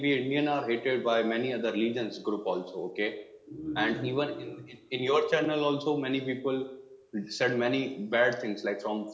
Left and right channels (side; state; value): both; identical; correlation 1.00